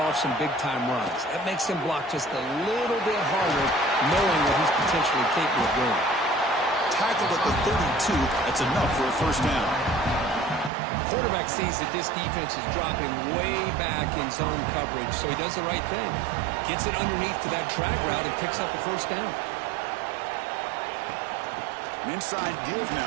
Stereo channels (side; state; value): left; drops out; at 10.7 s